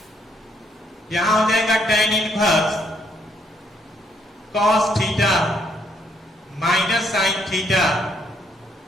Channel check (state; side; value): normal; both; correlation 0.70